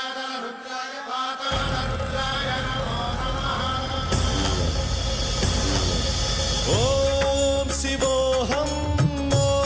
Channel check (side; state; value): both; identical; correlation 1.00